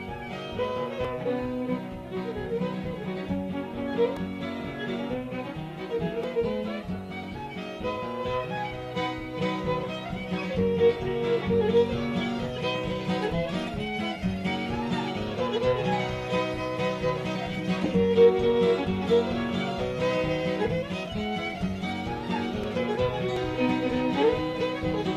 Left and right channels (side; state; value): both; identical; correlation 1.00